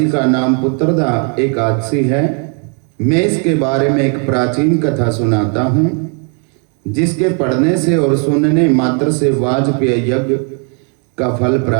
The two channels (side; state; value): left; quieter; 39.7 dB